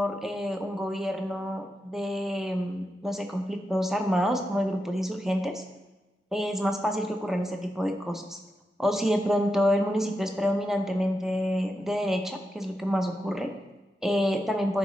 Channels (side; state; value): both; normal; correlation 0.87